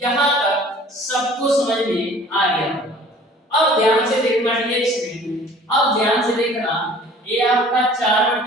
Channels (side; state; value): both; normal; correlation 0.49